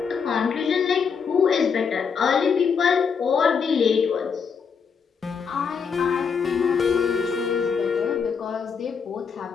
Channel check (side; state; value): right; quieter; 6.2 dB